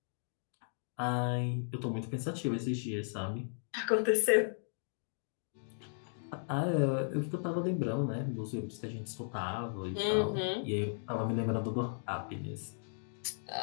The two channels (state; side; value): silent; right; digital silence